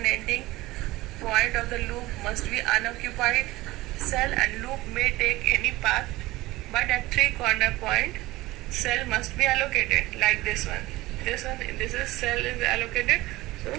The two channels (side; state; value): left; quieter; 18.9 dB